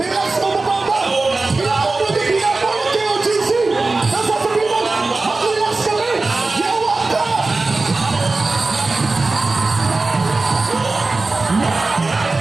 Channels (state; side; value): quieter; left; 3.5 dB